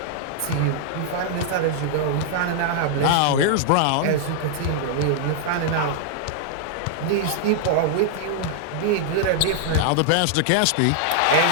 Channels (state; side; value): different; both; correlation -0.01